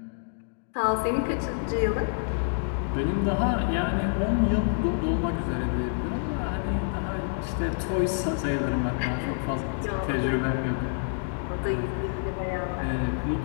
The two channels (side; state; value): right; silent; digital silence